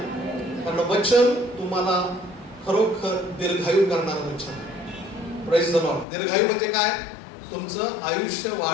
कारण वचन तुम्हाला खरोखर दीर्घायू करणारं वचन. Praise the Lord. दीर्घायू म्हणजे काय? तुमचं आयुष्य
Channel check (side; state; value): right; drops out; at 6.1 s